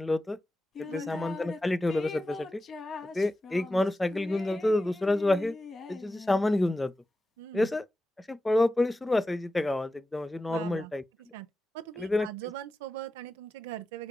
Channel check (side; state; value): both; normal; correlation 0.93